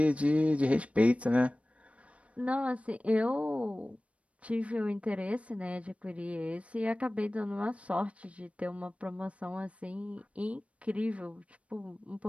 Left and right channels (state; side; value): late; left; 0.064 ms